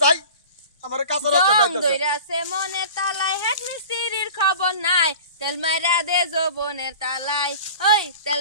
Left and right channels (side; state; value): both; inverted; correlation -0.40